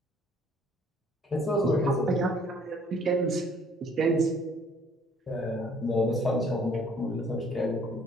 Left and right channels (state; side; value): normal; both; correlation 0.59